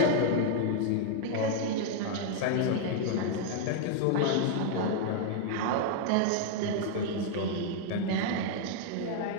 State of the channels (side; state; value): both; different; correlation 0.00